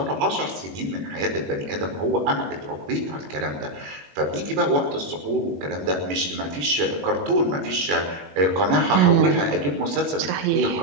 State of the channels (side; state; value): left; late; 21 ms